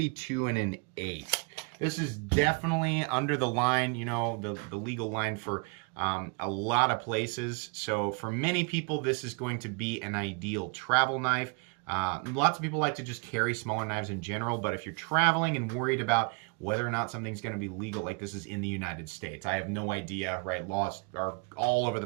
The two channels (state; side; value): quieter; left; 33.0 dB